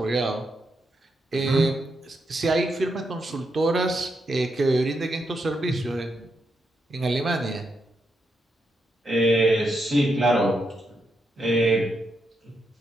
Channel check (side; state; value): both; normal; correlation 0.82